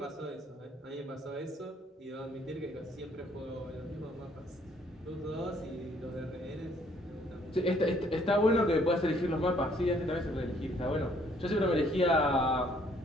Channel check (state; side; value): normal; both; correlation 0.64